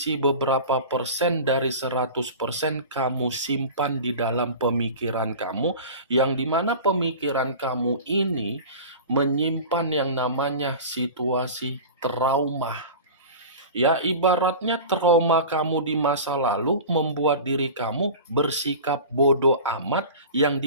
beberapa persen dari 100% kamu simpan di dalam pemikiran kamu, yang dimana pemikiran kamu ini menyimpan yang namanya situasi trauma. Ya, ibaratnya trauma kamu di masa lalu membuat diri kamu bersikap bodoh amat, yang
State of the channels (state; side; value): inverted; both; correlation -0.35